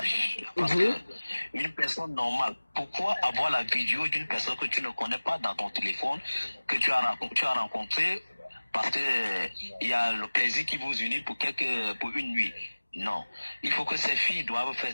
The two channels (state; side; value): inverted; both; correlation -1.00